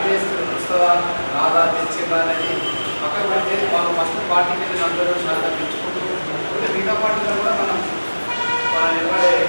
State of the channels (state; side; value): inverted; both; correlation -1.00